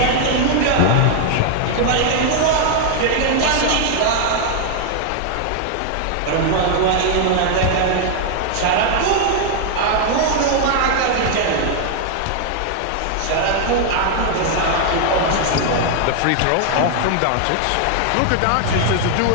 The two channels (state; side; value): different; both; correlation 0.00